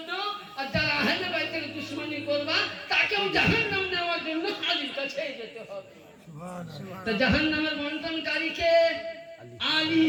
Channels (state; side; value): identical; both; correlation 1.00